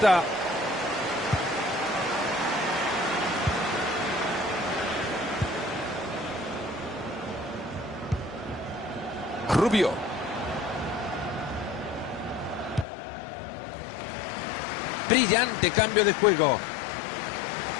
Rubio. Brillante cambio de juego.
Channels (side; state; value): right; drops out; at 12.9 s